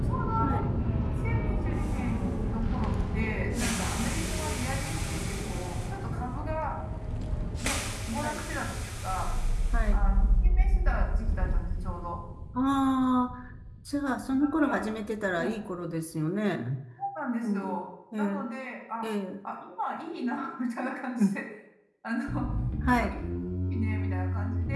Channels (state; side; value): identical; both; correlation 1.00